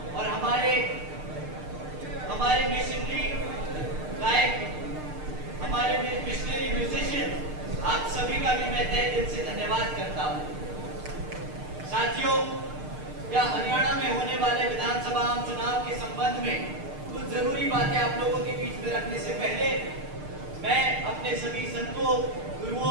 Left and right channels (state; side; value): late; left; 6.6 ms